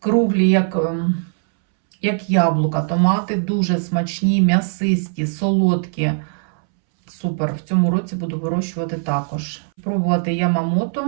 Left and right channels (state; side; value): silent; left; 66 dB below the other